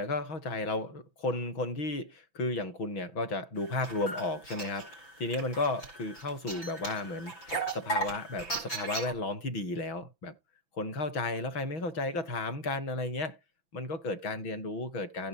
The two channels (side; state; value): right; late; 5.9 ms